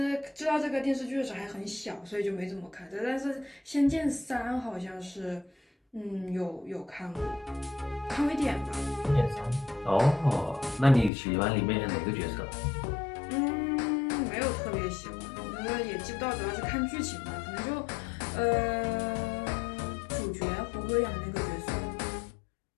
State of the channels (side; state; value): right; drops out; at 11.1 s